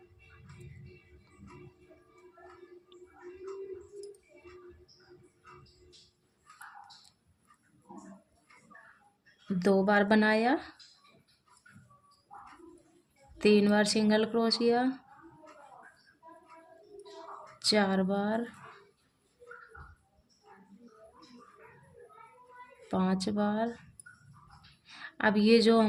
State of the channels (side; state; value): both; identical; correlation 1.00